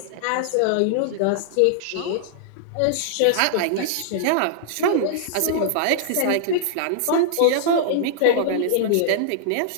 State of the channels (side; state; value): both; different; correlation -0.01